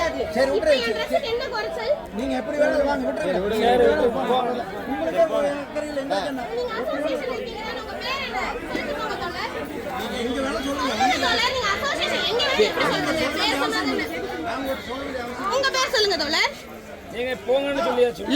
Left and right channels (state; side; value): identical; both; correlation 1.00